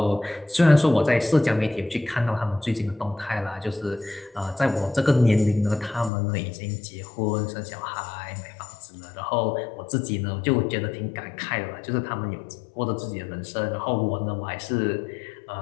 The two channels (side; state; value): right; drops out; at 6.1 s